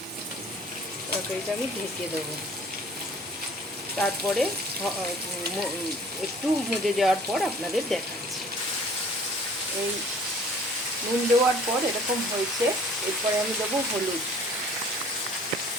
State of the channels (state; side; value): normal; both; correlation 0.52